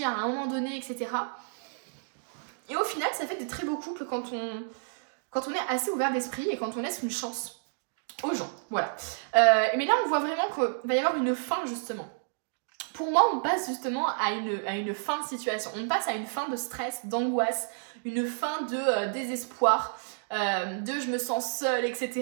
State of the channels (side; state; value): left; silent; digital silence